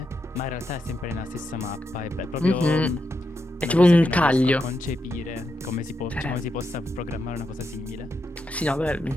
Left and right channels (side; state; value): both; normal; correlation 0.84